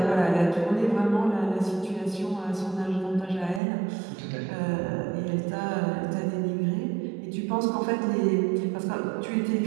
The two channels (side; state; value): left; drops out; at 3.6 s